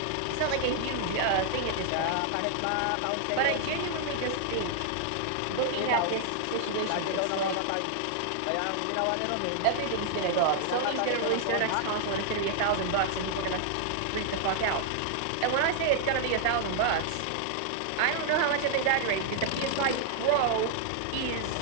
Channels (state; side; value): different; both; correlation 0.00